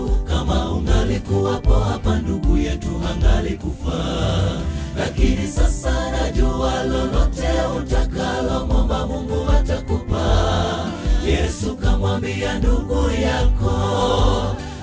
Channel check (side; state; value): both; identical; correlation 1.00